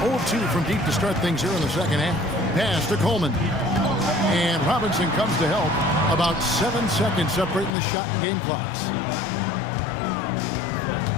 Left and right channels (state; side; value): drops out; right; at 7.7 s